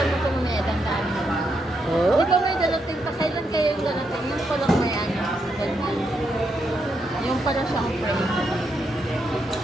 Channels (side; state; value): both; normal; correlation 0.80